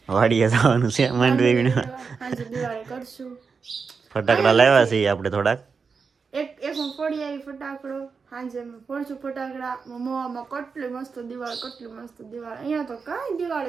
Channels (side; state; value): left; quieter; 5.2 dB